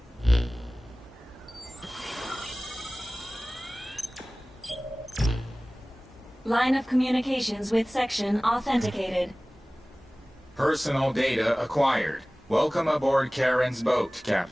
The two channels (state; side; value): normal; both; correlation 0.98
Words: Line of communications with section authenticated. Personal data acquired. Welcome aboard Karen's boat,